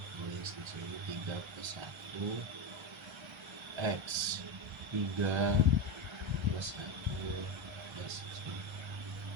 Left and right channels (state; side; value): late; left; 1.3 ms